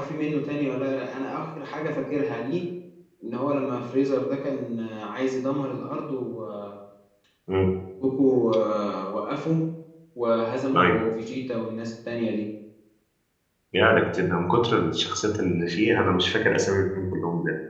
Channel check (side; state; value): both; identical; correlation 1.00